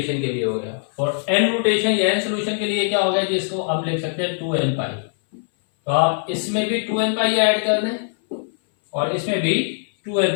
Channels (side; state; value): right; silent; 62 dB below the other